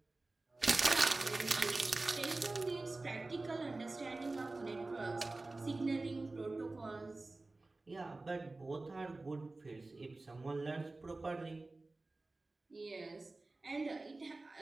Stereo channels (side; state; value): left; quieter; 3.2 dB